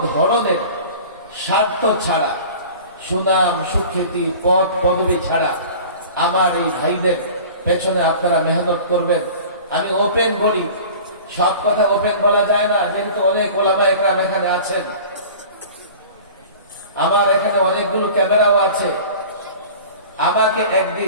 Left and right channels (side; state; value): both; inverted; correlation -0.41